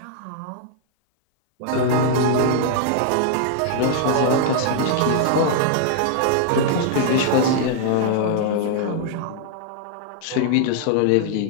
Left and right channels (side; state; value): both; different; correlation -0.01